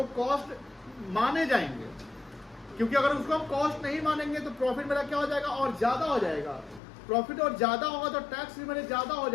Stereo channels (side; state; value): right; drops out; at 6.8 s